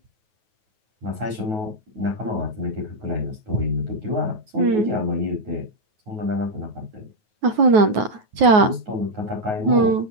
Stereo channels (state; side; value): late; left; 9.4 ms